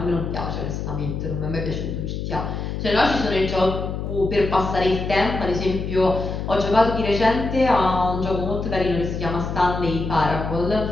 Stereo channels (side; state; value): left; noise; hum, 4 dB below the sound